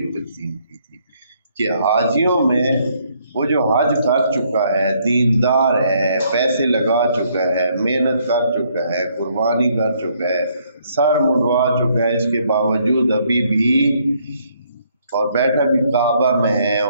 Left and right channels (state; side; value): inverted; both; correlation -0.69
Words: تقسیم کی تھی کہ حاجیوں میں وہ جو حج کر چکا ہے، دیندار ہے، پیسے لگا چکا ہے، محنت کر چکا ہے، قربانی کر چکا ہے، سر منڈوا چکا ہے، اس کے باوجود ابھی بھی اور بیٹھا بھی کعبہ میں ہے